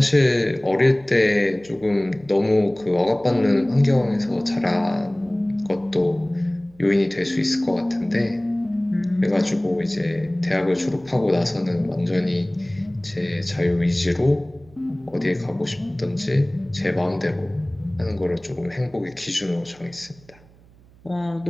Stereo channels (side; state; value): right; noise; hum, 27 dB below the sound